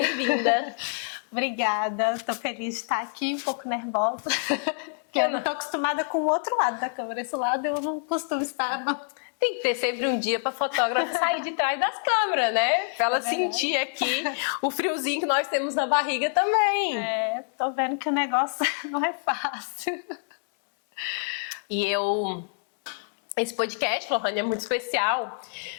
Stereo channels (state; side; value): silent; right; 60 dB below the other